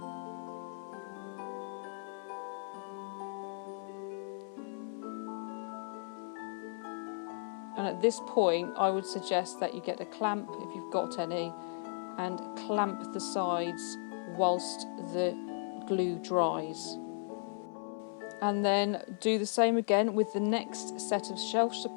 And at this point, I would suggest that you get a clamp, if you've got any, and clamp the sides whilst the glue dries. And then do the same again with the next set of shelf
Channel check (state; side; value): silent; right; 54 dB below the other